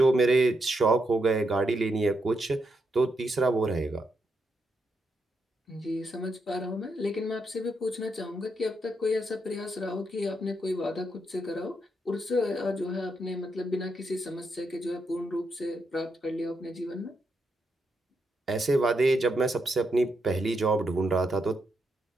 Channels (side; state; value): both; normal; correlation 0.82